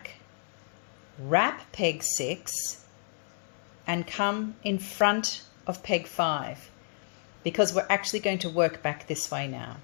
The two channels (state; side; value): silent; right; digital silence